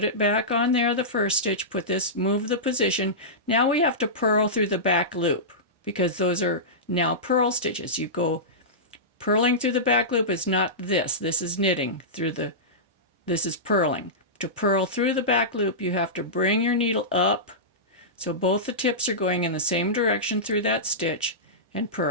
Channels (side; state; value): both; normal; correlation -0.16